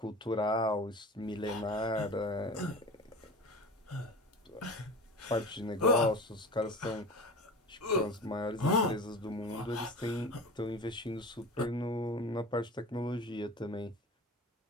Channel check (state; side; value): normal; both; correlation 0.34